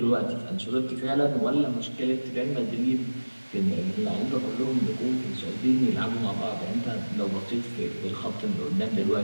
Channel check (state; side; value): inverted; both; correlation -1.00